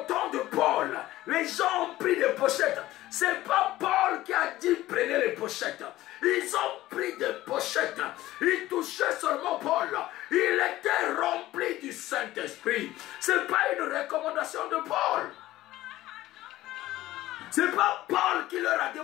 temps de Paul, les gens ont pris des pochettes. Ce n'est pas Paul qui a dit prenez les pochettes. Ils ont pris des pochettes. Ils touchaient seulement Paul. Il était rempli du Saint-Esprit. Ce n'est pas une recommandation de Paul. Ce n'est pas Paul qui leur a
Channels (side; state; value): right; quieter; 16.0 dB